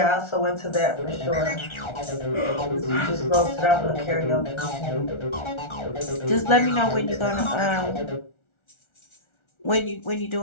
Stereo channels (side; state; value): right; late; 1.4 ms